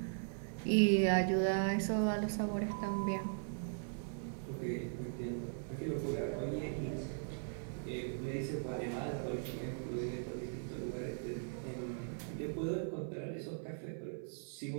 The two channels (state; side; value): silent; left; 52 dB below the other